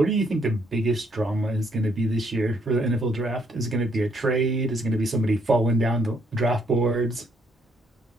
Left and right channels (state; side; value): normal; both; correlation 0.70